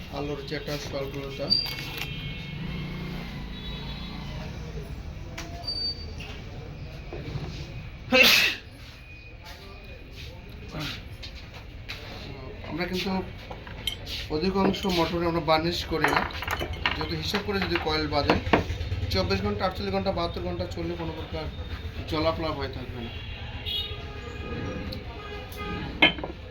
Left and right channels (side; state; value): both; identical; correlation 1.00